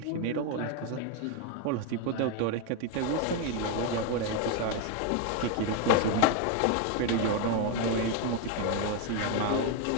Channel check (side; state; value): both; different; correlation 0.01